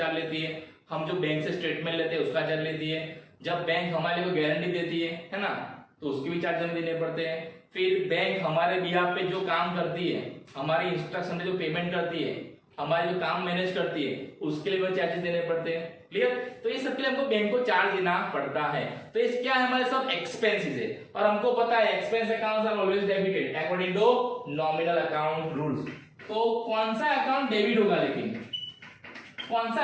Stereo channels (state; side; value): identical; both; correlation 1.00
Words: लेती है, हम जो बैंक से स्टेटमेंट लेते हैं उसका चार्ज लेती है, जब बैंक हमारे को गारंटी देती है ना, तो उसके भी चार्ज हमें देने पड़ते हैं। फिर बैंक हमारे बिहाफ पे जो काम करती है, हमारी इंस्ट्रक्शन पे जो पेमेंट करती है, हमारे जो काम मैनेज करती है, उसके लिए भी चार्जेस देने पड़ते हैं। क्लियर? तो ये सबके लिए हमको बैंक को चार्ज देना पड़ता है। तो इस क्या है? हमारे सब एक्सपेंसेस है, और हमको पता है expense accounts are always debited according to nominal account rules. तो कौन सा अकाउंट डेबिट होगा? लेकिन कौन सा